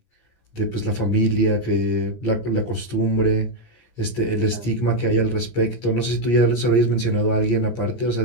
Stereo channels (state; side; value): late; right; 17 ms